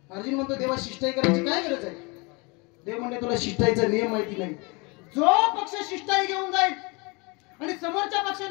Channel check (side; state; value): right; quieter; 28.6 dB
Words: अर्जुन म्हणतो देवा शिष्टाई करायची काय गरज आहे? देव म्हणले तुला शिष्टाईचा नियम माहिती नाही. जो पक्ष शिष्टाई घेऊन जाईल आणि समोरच्या